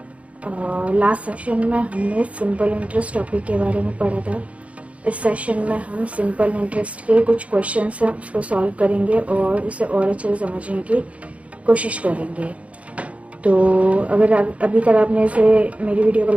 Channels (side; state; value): left; late; 0.065 ms